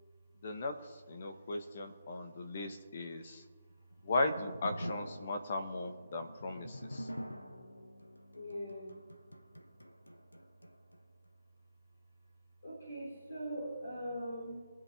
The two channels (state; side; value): inverted; both; correlation -0.81